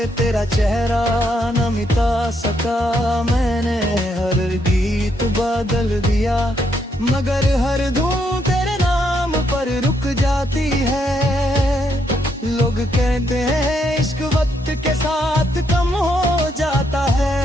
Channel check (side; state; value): both; normal; correlation 0.76